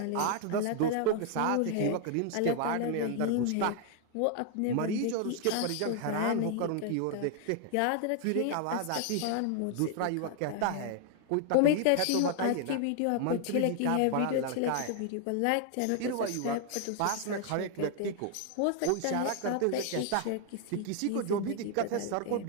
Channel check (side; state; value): both; different; correlation 0.00